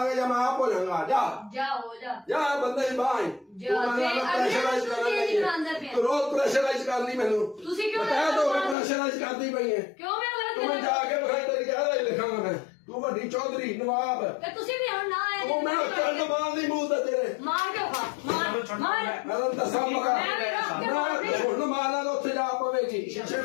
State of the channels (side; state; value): right; drops out; at 8.8 s